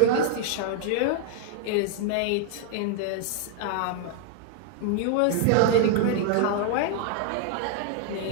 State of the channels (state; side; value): different; both; correlation 0.01